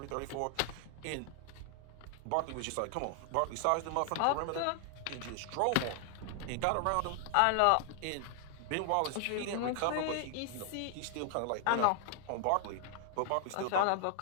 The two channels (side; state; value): both; different; correlation 0.00